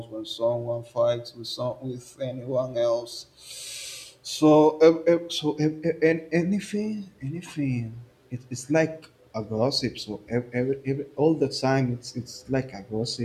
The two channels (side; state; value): both; identical; correlation 1.00